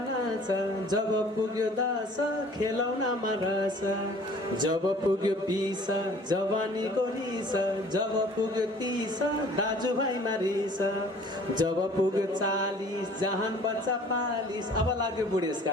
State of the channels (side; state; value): both; normal; correlation 0.51